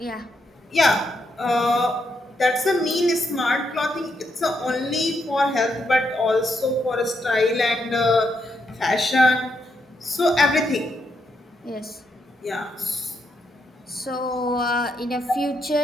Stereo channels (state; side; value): normal; both; correlation 0.80